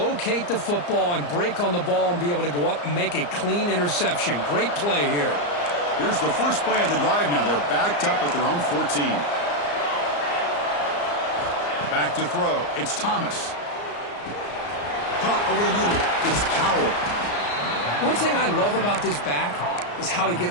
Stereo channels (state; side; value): late; right; 34 ms